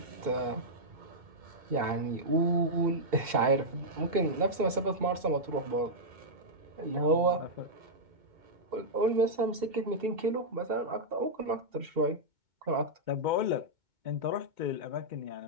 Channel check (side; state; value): left; late; 2.7 ms